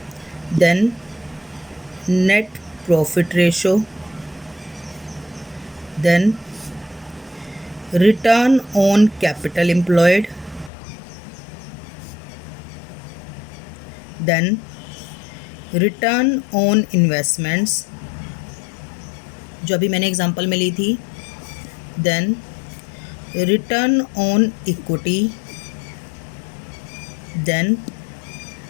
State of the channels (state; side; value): drops out; right; at 10.7 s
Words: then net profit ratio, then return on capital employed, then return on investments जो अभी मैंने एग्जांपल में ली थी, then return on equity, then